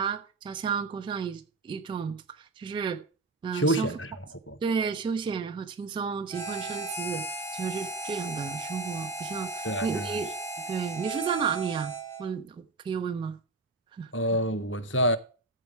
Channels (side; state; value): left; quieter; 3.2 dB